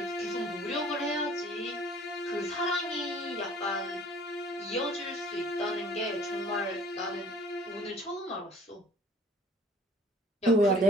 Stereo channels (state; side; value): normal; both; correlation 0.53